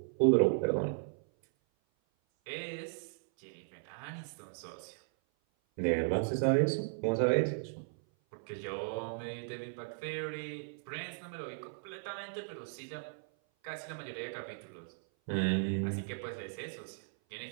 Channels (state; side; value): silent; left; 54 dB below the other